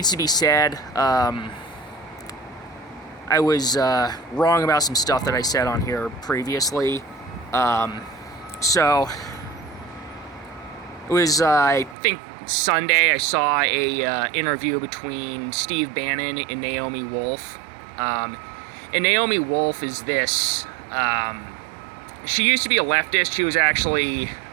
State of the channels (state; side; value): drops out; left; at 12.0 s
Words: to be said. I was wrong about some stuff that I said on here previously. So it was, I think, Sunday. I saw a interview between Steve Bannon and Naomi Wolf. And Naomi Wolf is this. She used to be a leftist. She was actually